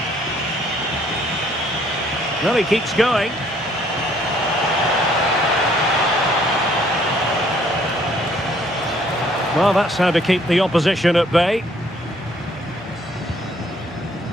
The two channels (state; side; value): normal; both; correlation 0.63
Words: Well, he keeps going. Well, that's how to keep the opposition at bay.